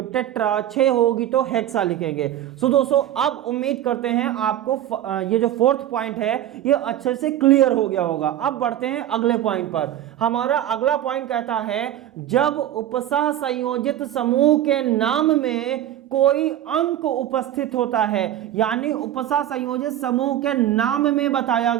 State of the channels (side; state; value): left; quieter; 12.0 dB